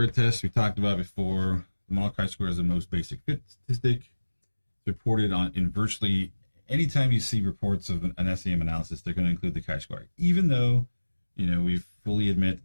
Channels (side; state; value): both; inverted; correlation -1.00